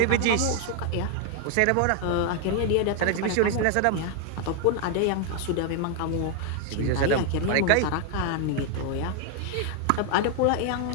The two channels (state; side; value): different; both; correlation 0.00